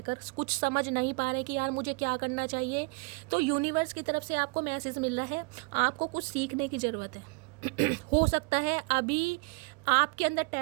कुछ समझ नहीं पा रहे कि यार मुझे क्या करना चाहिए, तो यूनिवर्स की तरफ से आपको मैसेज मिल रहा है, आपको कुछ सीखने की ज़रूरत है। हो सकता है अभी आपके अंदर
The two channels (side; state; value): left; quieter; 30.0 dB